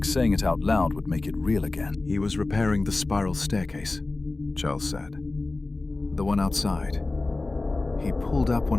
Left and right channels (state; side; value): quieter; right; 3.2 dB